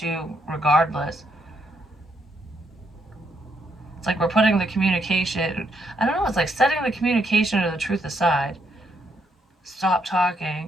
regardless. It's like we're putting the communication, I don't know, it's like setting the communication or the truth aside. Stop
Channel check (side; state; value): both; normal; correlation 0.76